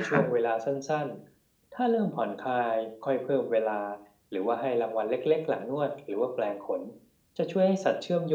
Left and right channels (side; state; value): both; identical; correlation 1.00